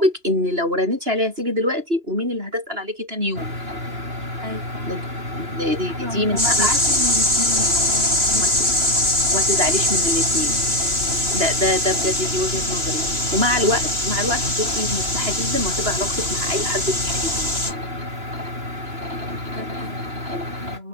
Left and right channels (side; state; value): left; late; 2.9 ms